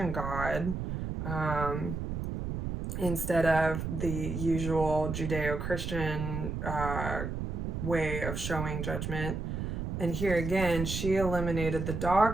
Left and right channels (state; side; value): noise; right; rumble, 4 dB below the sound